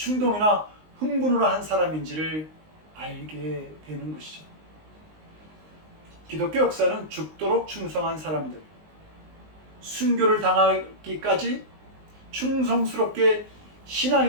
흥분으로 한 사람인지를 알게 되는 것이죠. 기독교 역사는 죽도록 충성한 사람들, 순교를 당하기까지 충성스럽게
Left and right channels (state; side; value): late; left; 19 ms